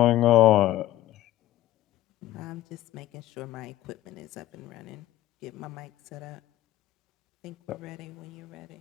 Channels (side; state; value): right; quieter; 14.4 dB